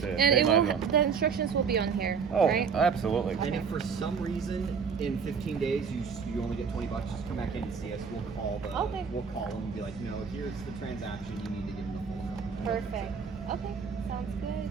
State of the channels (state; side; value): quieter; left; 6.1 dB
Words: And pay it my will, bill. the instructions will be on here, Oh, right? absolutely. And if for some reason in 15 days you only get $20, just come back in and see us. We'll call Okay. we'll call them and be like, no, here's the transaction. You need to give them the full amount. Perfect. Okay, sounds good.